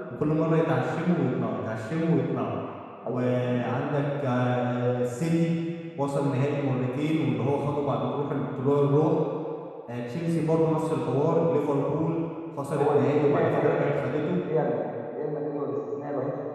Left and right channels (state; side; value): identical; both; correlation 1.00